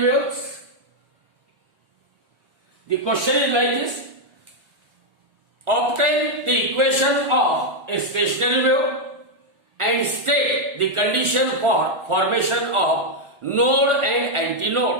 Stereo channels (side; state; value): left; late; 1.4 ms